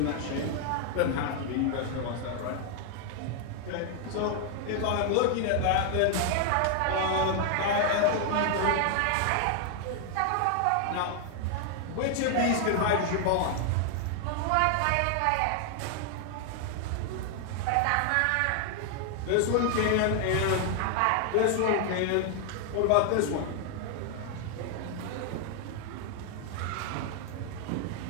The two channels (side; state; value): both; different; correlation 0.00